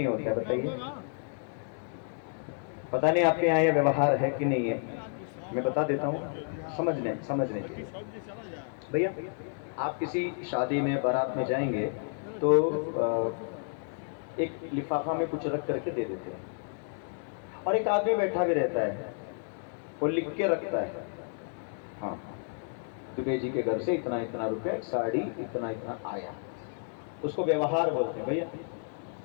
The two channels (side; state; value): right; silent; 57 dB below the other